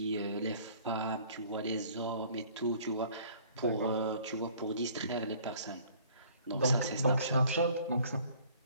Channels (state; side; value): inverted; both; correlation -0.54